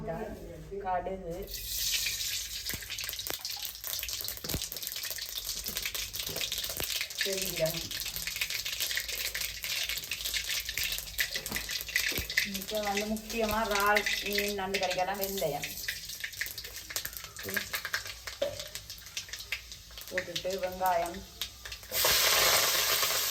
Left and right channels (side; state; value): both; identical; correlation 1.00